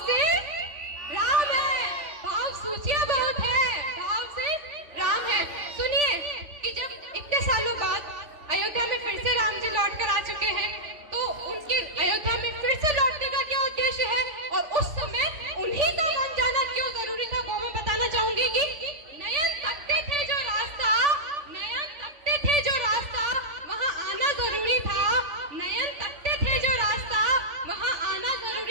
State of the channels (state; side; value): late; left; 3.4 ms